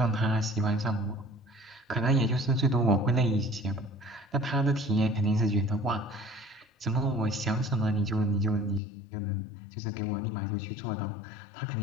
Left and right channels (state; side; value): drops out; right; at 8.8 s